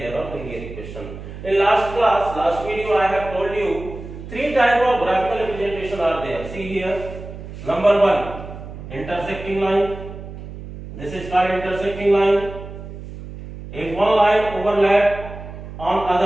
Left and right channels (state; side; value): noise; right; hum, 12 dB below the sound